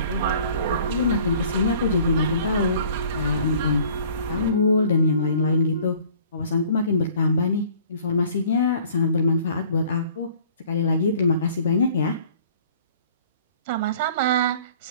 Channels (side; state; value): both; inverted; correlation -0.52